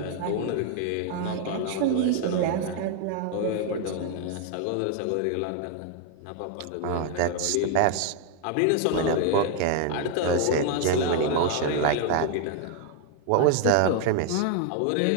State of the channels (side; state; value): both; different; correlation 0.00